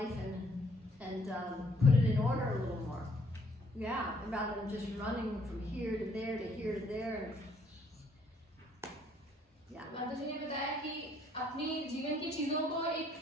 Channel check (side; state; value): both; normal; correlation 0.65